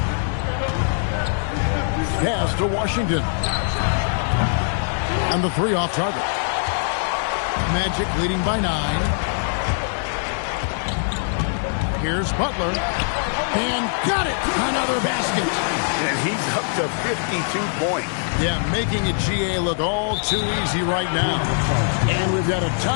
Pass to Washington. And the 3 off target. Magic leading by 9. Here's Butler. And got it! Another basket. And he's up to 52 points. Yeah, making a GA look all too easy right now. And we've got a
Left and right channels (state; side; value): silent; right; digital silence